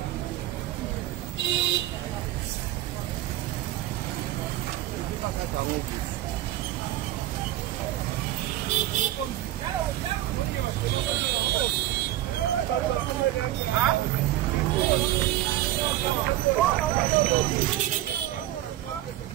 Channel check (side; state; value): left; quieter; 14.5 dB